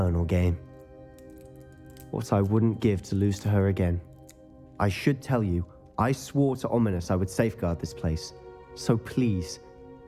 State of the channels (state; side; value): identical; both; correlation 1.00